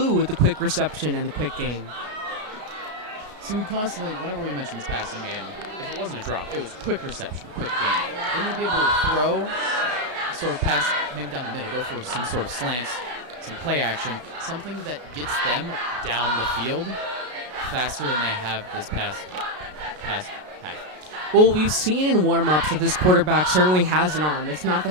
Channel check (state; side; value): late; left; 33 ms